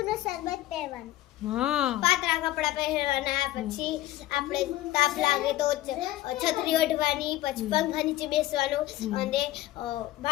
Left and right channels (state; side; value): quieter; right; 15.4 dB